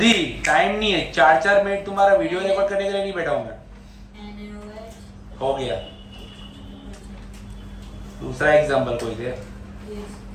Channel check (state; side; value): identical; both; correlation 1.00